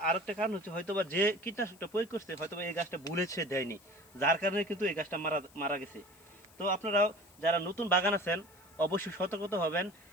আরেকটা কারণ হচ্ছে হয়তোবা যে কীটনাশকটা প্রয়োগ করছে হয়তোবা এই গাছটা ভুলেছে দেয়নি, যার কারণে কিন্তু এই গাছটা মারা গেছে। তো আপনারাও যারা নতুন বাগান আছেন অবশ্যই সতর্কতা হবেন,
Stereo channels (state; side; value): noise; left; hiss, 26 dB below the sound